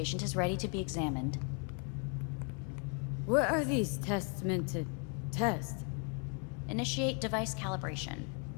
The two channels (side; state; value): right; quieter; 37.7 dB